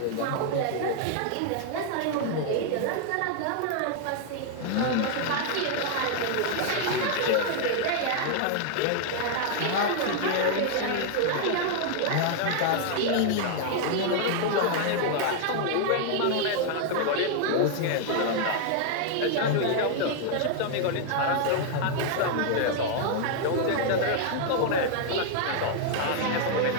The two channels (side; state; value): both; different; correlation 0.00